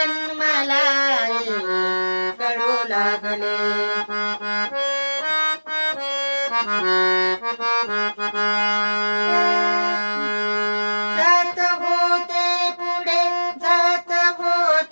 मला कळू लागले. जात होते पुढे, जात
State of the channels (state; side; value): inverted; both; correlation -1.00